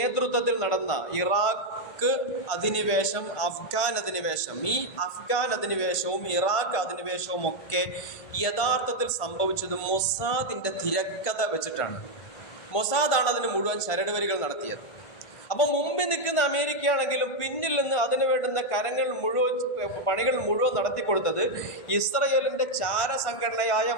നടന്ന ഇറാഖ് അധിനിവേശം, അഫ്ഗാൻ അധിനിവേശം. ഈ അഫ്ഗാൻ അധിനിവേശവും ഇറാഖ് അധിനിവേശവും ഒക്കെ യഥാർത്ഥത്തിൽ സംഭവിച്ചത് മൊസാദിന്റെ തിരക്കഥ വെച്ചിട്ടാണ്. മൊസാദാണ് അതിന് മുഴുവൻ ചരടുവരികൾ നടത്തിയത്. അപ്പം മുമ്പിൽ നിൽക്കുന്ന അമേരിക്കയാണെങ്കിലും പിന്നിൽ നിന്ന് അതിന് വേണ്ടുന്ന പണികൾ മുഴുവൻ നടത്തിക്കൊടുത്തത് ഇസ്രയേലിന്റെ ചാരസംഘടനയായ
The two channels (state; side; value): late; right; 1.5 ms